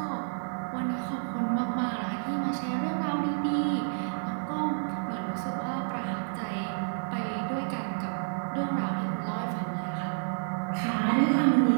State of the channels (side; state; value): left; silent; digital silence